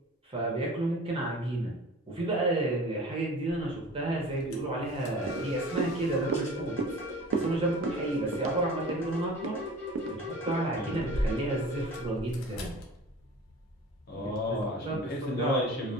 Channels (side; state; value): both; normal; correlation 0.41